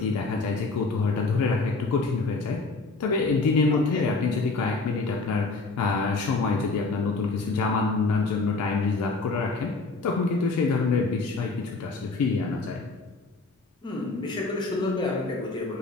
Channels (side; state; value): right; quieter; 3.7 dB